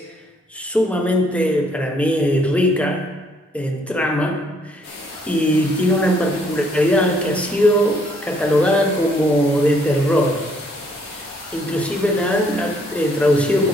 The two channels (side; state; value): both; normal; correlation 0.67